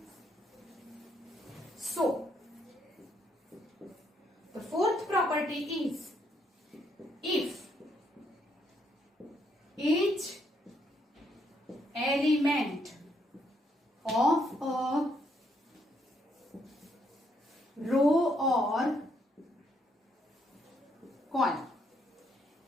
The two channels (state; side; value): normal; both; correlation 0.73